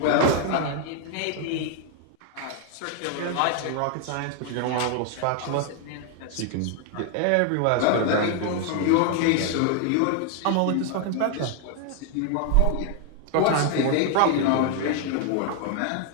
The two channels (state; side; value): different; both; correlation 0.00